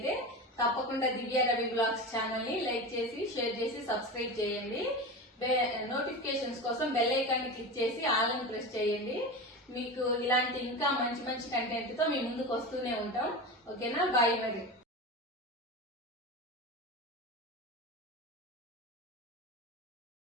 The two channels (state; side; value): normal; both; correlation 0.26